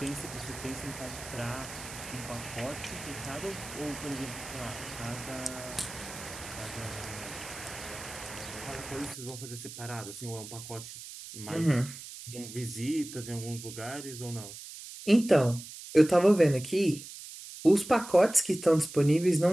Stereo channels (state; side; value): noise; right; hiss, 12 dB below the sound